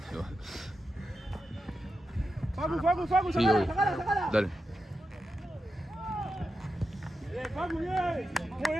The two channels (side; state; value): both; normal; correlation 0.89